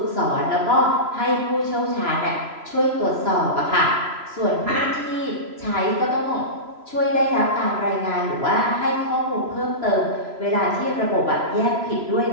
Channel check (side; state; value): left; late; 3.0 ms